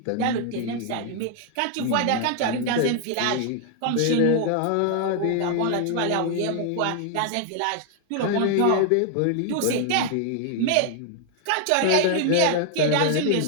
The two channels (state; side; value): different; both; correlation 0.00